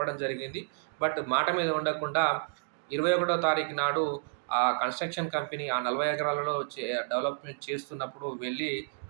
జరిగింది. బట్ మాట మీద ఉండకుండా 21వ తారీఖు నాడు ఆ కన్‌స్ట్రక్షన్ కంపెనీ ఆ 40 ఎకరాలలో డెవలప్‌మెంట్ చేస్తున్నప్పుడు వెళ్ళి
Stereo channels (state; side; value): silent; left; digital silence